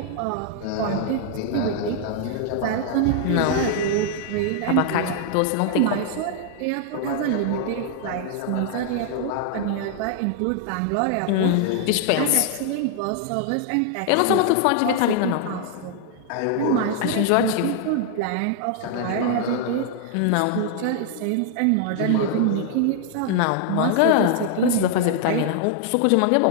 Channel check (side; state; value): both; different; correlation -0.01